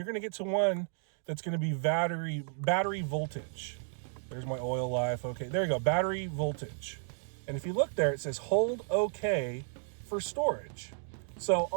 gonna get to one that's gonna be battery voltage. There's my oil life, okay, there you go, battery voltage. And if you look there, it says hold OK for storage. So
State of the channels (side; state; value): left; silent; digital silence